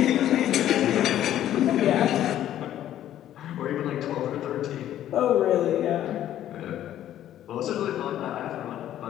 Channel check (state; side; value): quieter; right; 12.0 dB